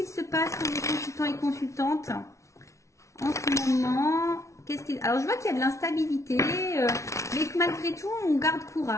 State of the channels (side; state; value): right; late; 0.14 ms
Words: se passe pour les consultants et consultantes en ce moment? Alors, je vois qu'il y a de l'instabilité, mais que malgré tout, on garde